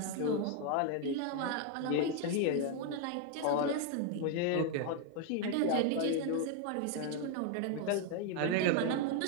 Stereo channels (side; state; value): both; different; correlation 0.01